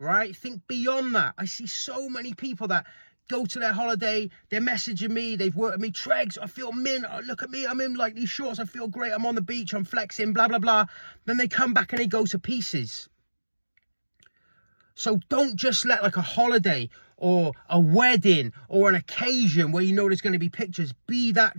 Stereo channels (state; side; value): inverted; both; correlation -1.00